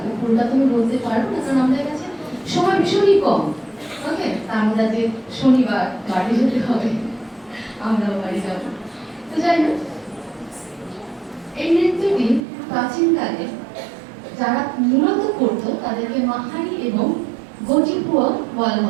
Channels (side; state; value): left; drops out; at 12.4 s